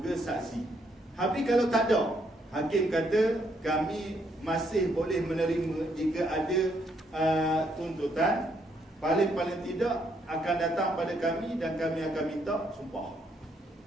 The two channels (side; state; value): both; normal; correlation 0.73